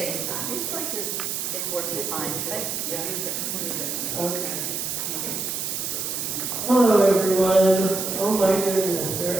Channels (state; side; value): noise; right; hiss, 3 dB below the sound